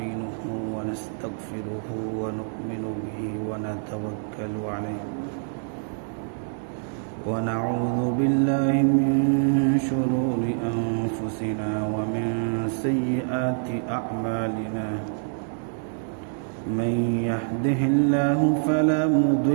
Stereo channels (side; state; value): left; silent; digital silence